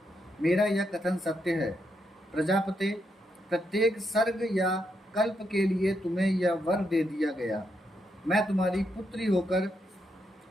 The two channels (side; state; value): both; normal; correlation 0.81